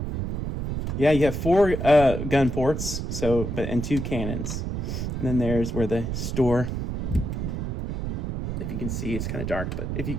4 gun ports, and 2 cannons. And then there's where the store If you can see, it's kind of dark, but if you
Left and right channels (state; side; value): noise; right; rumble, 3 dB below the sound